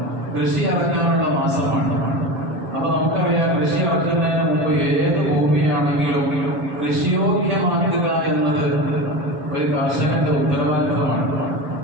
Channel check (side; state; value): left; late; 7.2 ms